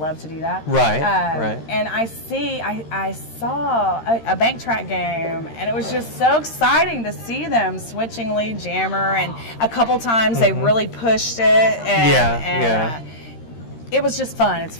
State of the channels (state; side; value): late; right; 13 ms